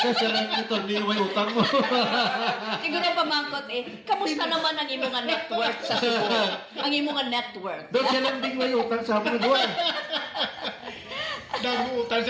lang ito, niway utang mo. Siguro pamangkot kamusta naman ang imong nga net worth sa Cebu? Ang imong nga net worth. Dos siya lang ding may utang sa mga duwa. naguutan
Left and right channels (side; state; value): both; identical; correlation 1.00